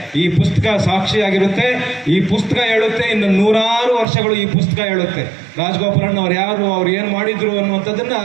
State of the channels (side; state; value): left; drops out; at 4.0 s